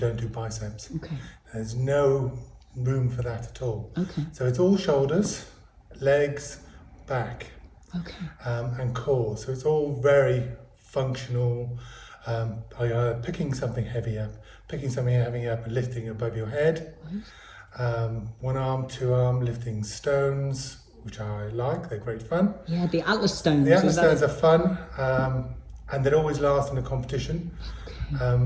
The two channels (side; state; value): both; identical; correlation 1.00